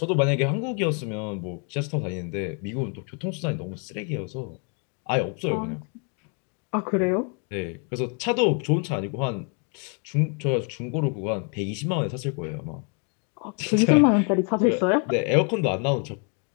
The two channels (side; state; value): right; quieter; 39.0 dB